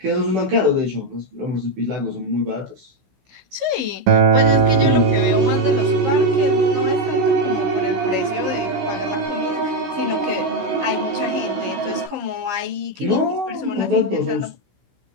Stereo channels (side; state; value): left; late; 16 ms